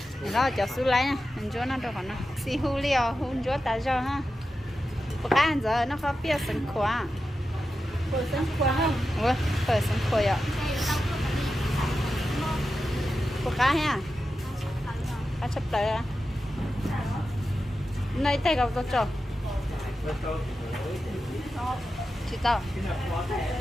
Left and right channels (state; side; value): normal; both; correlation 0.91